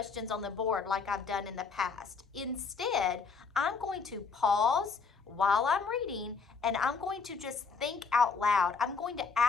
on the board like I've done in the past. Instead, I'm going to pause while I'm reading and I'm going to just think out loud. I'm going to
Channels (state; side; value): quieter; right; 5.1 dB